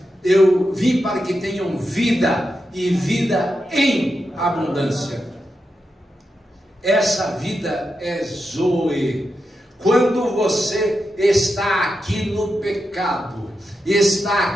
Eu vim para que tenham vida e vida em abundância. Essa vida é Zoe. Quando você está aqui no pecado, está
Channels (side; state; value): both; normal; correlation 0.87